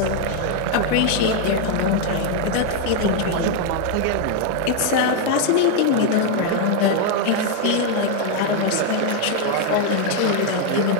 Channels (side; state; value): both; different; correlation 0.01